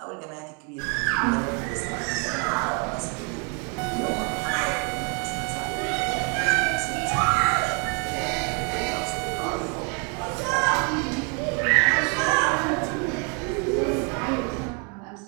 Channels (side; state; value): left; quieter; 35.1 dB